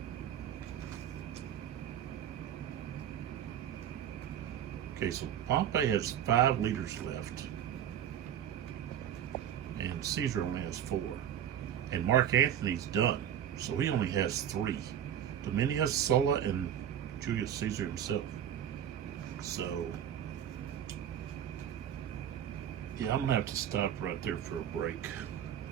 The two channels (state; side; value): quieter; left; 9.9 dB